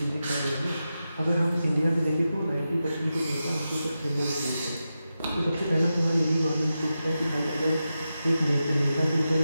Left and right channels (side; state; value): both; inverted; correlation -0.90